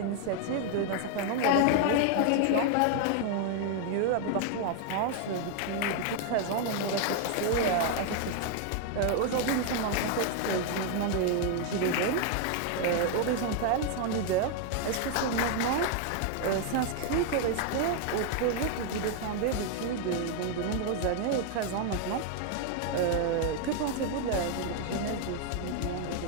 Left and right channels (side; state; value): both; different; correlation 0.00